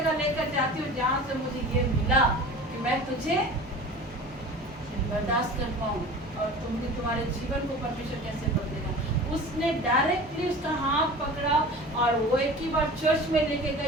लेकर जाती हूँ जहाँ से मुझे ये मिला कि मैं तुझे बर्दाश्त कर पाऊँ और तुम्हारे जीवन को परमेश्वर कैसे बदलेगा। उसने डायरेक्टली उसका हाथ पकड़ा और वो एक ही बार चर्च में लेके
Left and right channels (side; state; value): both; normal; correlation 0.38